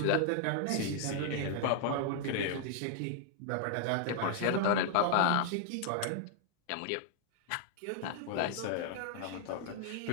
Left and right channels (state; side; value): different; both; correlation 0.00